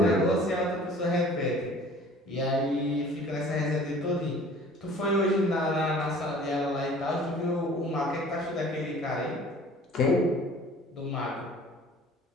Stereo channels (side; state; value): both; normal; correlation 0.49